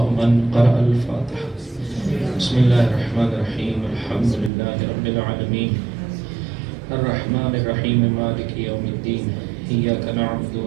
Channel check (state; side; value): drops out; left; at 4.5 s